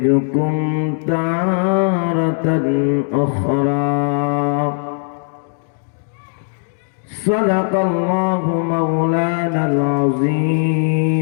تارة أخرى. صدق الله مولانا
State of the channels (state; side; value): silent; right; 67 dB below the other